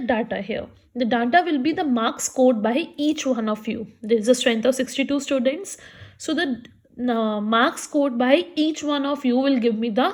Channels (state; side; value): identical; both; correlation 1.00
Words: here? The data will be the marks scored by each one of you. There is a strength of 62 students. So the marks scored by each one of you will give me the